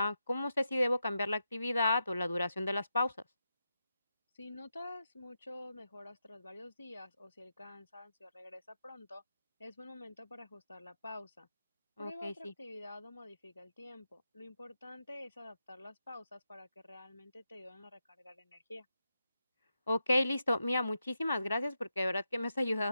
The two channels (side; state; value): both; inverted; correlation -0.88